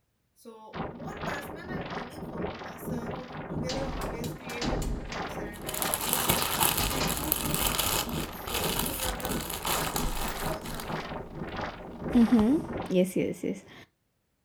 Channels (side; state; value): both; identical; correlation 1.00